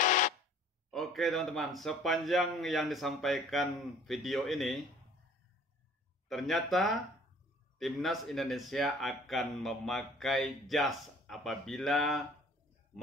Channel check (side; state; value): both; normal; correlation 0.52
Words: Oke teman-teman, sepanjang yang disampaikan video ini, ternyata Timnas Indonesia akan memakai jas apabila